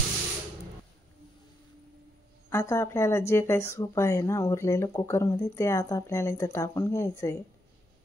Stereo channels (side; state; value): both; normal; correlation 0.80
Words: आता आपल्याला जे काही सूप आहे ना उरलेलं कुकरमध्ये, ते आता आपल्याला इथं टाकून घ्यायचं आहे।